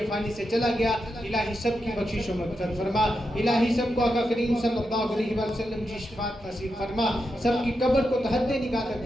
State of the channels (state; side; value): normal; both; correlation 0.86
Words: فانی سے چلا گیا، الہی سب کی بخشش و مغفرت فرما۔ الہی سب کو آقا کریم صلی اللہ علیہ وسلم کی شفاعت نصیب فرما، سب کی قبر کو تحت نگاہ